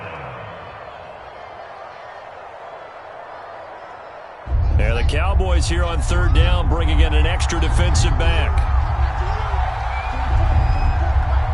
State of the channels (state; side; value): identical; both; correlation 1.00